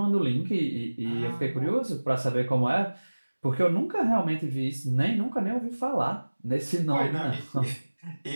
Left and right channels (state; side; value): inverted; both; correlation -1.00